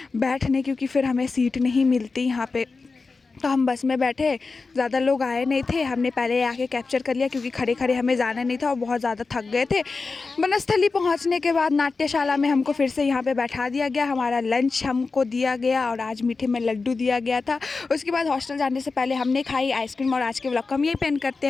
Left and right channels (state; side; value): quieter; right; 4.2 dB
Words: बैठने, क्योंकि फिर हमें सीट नहीं मिलती यहाँ पे। तो हम बस में बैठे, ज़्यादा लोग आए नहीं थे। हमने पहले आके कैप्चर कर लिया क्योंकि खड़े खड़े हमें जाना नहीं था और बहुत ज़्यादा थक गए थे। बनस्थली पहुँचने के बाद नाट्यशाला में हमको फिर से यहाँ पे बैठा दिया गया। हमारा लंच हमको दिया गया और आज मीठे में लड्डू दिया गया था। उसके बाद हॉस्टल जाने से पहले हमने खाई आइसक्रीम। और आज के व्लॉग को हम यही पेन करते